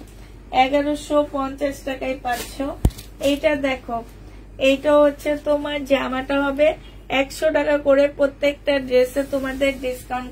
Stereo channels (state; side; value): identical; both; correlation 1.00